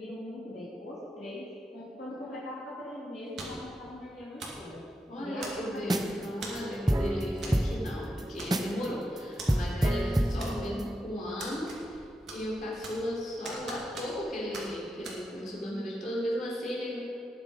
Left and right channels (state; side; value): normal; both; correlation 0.86